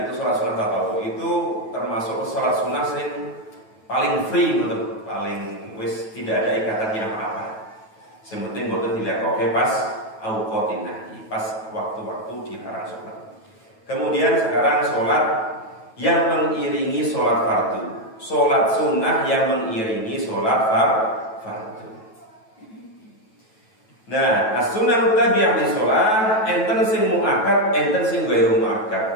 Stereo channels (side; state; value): right; late; 9.2 ms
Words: itu sholat sunnah tatawwu itu termasuk sholat sunnah yang paling free, betul, paling wis tidak ada ikatannya apa-apa. Sementing boten dilakoke pas auqatin nahi, pas waktu-waktu dilarang sholat. Kemudian sekarang sholat yang mengiringi sholat fardu, sholat sunnah yang mengiringi sholat fardu. Nah, as-sunnah tabi'ah di sholat, enten sing muakkad, enten sing ghairu muakkad.